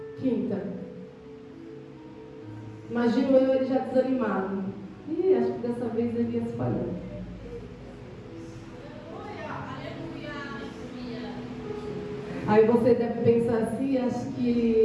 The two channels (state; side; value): identical; both; correlation 1.00